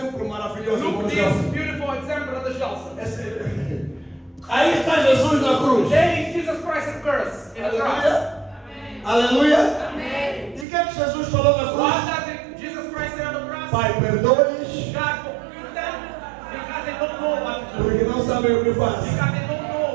maravilhoso. Look irmão this Gelson. beautiful example of the Johnson. Aí está Jesus na cruz. There is Jesus Christ in curse in the cross. Aleluia. Aleluia. E o que é que Jesus falou na What cruz? does Jesus Christ say on the cross? Pai, perdoa-lhes, God forgive them because they don't know what to do. porque não sabem o que fazem. Because they don't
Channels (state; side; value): drops out; left; at 10.7 s